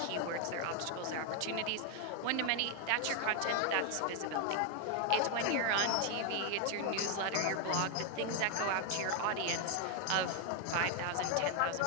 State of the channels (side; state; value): both; different; correlation 0.01